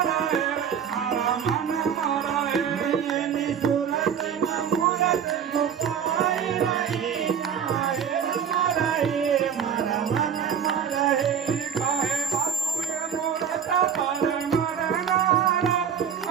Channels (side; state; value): left; quieter; 7.9 dB